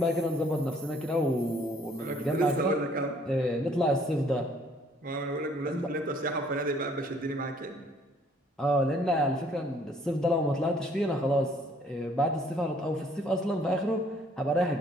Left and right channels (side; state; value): both; normal; correlation 0.61